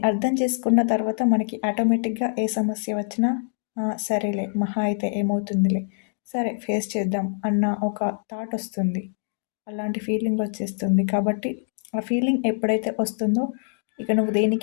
అర్థం చేసుకున్న తర్వాత మనకి ఆటోమేటిక్గా ఏ సమస్య వచ్చినా సరేలే, మహా అయితే ఏమవుతుందిలే, సరే ఫేస్ చేద్దాం అన్న ఒక థాట్ వస్తుంది. అలాంటి ఫీలింగ్ వచ్చేస్తుంది. కాబట్టి ఆ ఫీలింగ్ ఎప్పుడైతే వస్తుందో ఇక నువ్వు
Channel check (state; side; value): silent; right; digital silence